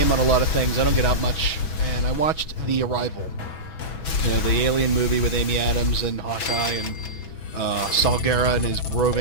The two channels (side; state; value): right; late; 6.1 ms